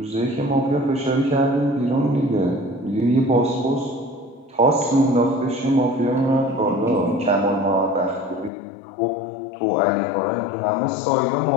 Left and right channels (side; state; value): right; drops out; at 8.5 s